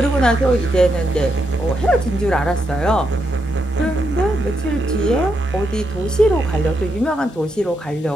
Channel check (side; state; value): both; normal; correlation 0.81